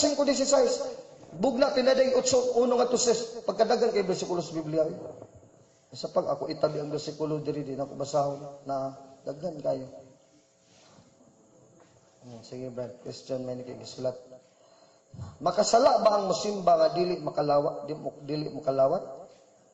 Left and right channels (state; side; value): identical; both; correlation 1.00